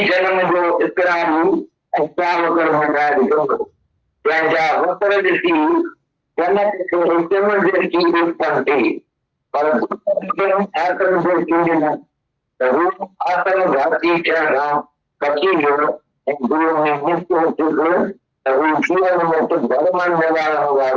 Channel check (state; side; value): identical; both; correlation 1.00